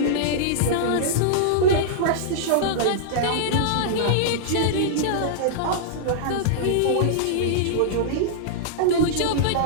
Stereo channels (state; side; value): different; both; correlation -0.02